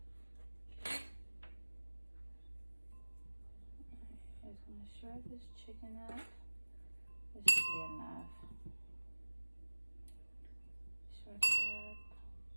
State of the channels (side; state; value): both; inverted; correlation -1.00